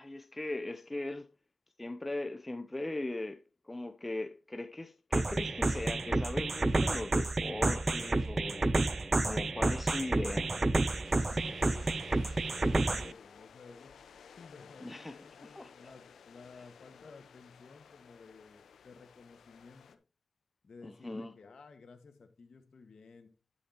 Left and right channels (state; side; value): normal; both; correlation 0.97